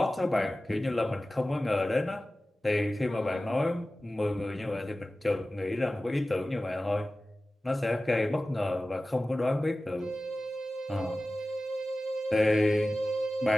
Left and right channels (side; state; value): both; normal; correlation 0.96